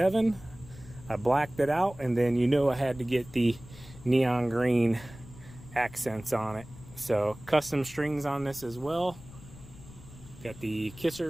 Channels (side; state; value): left; noise; rumble, 18 dB below the sound